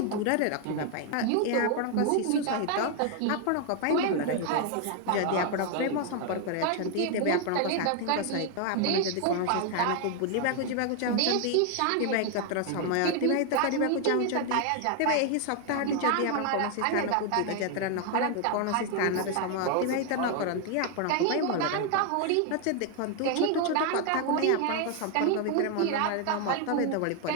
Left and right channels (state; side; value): different; both; correlation 0.00